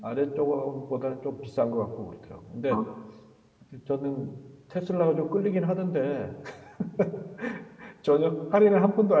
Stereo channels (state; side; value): identical; both; correlation 1.00